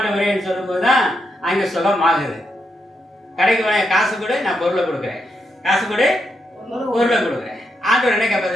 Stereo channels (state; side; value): normal; both; correlation 0.82